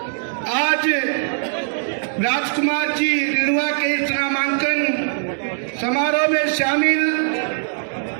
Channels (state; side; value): silent; left; digital silence